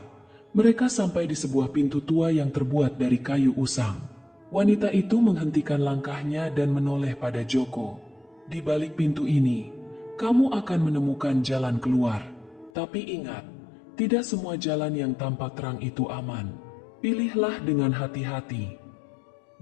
mereka sampai di sebuah pintu tua yang terbuat dari kayu usang. Wanita itu menghentikan langkahnya dan menoleh pada Joko. "Di balik pintu ini, kamu akan menemukan jalan keluar. Tapi ingat, tidak semua jalan yang tampak terang itu aman. Pilihlah dengan hati-hati."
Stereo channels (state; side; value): drops out; right; at 12.7 s